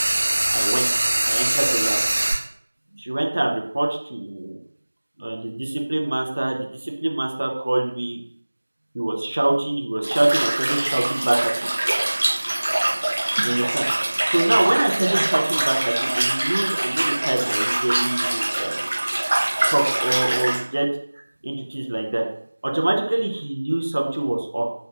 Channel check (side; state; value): both; inverted; correlation -1.00